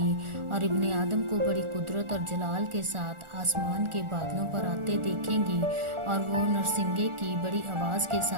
और इब्ने आदम को बड़ी कुदरत और जलाल के साथ आसमान के बादलों पर आते देखेंगी। और वो नरसिंगे की बड़ी आवाज़ के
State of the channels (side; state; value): left; late; 1.4 ms